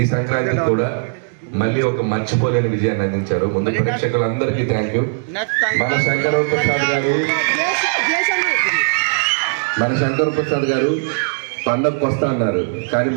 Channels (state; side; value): silent; left; digital silence